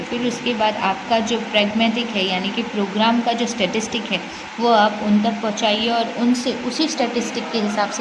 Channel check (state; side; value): identical; both; correlation 1.00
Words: फिर उसके बाद आपका जो प्रैग्मेटिक है, यानी कि प्रोग्राम का जो स्टैटिस्टिक है, वो आप उन तक पहुँचाइए और उनसे उसी स्टैटिस्टिक के हिसाब